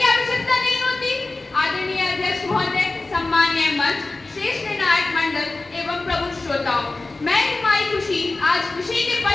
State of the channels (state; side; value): quieter; right; 3.3 dB